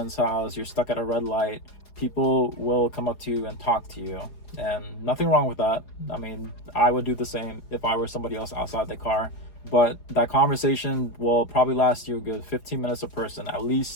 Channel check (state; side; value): late; right; 4.8 ms